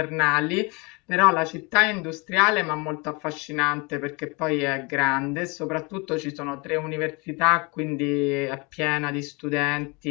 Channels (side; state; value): right; quieter; 28.6 dB